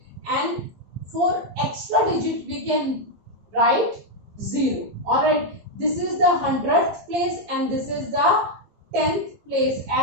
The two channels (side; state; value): left; late; 15 ms